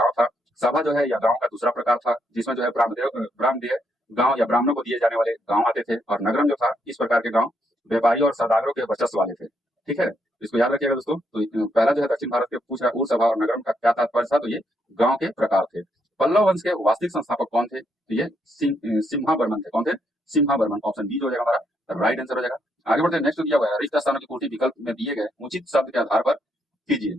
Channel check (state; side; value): normal; both; correlation 0.76